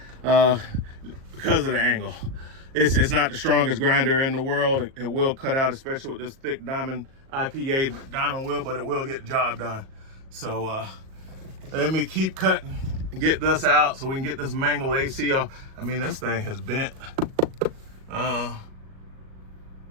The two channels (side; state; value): left; late; 37 ms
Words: because of the angle. It's not the strongest grinder in the world. It will cut out, especially with this thick diamond IPA diamond wheel, but it will get the job done. So let me keep cutting and get this out so we can get this mangled AC off. I mean, this thing has bent.